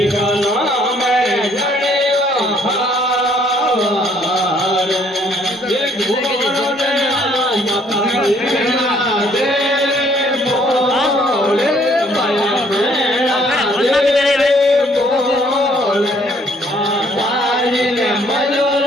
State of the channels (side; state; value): both; normal; correlation 0.63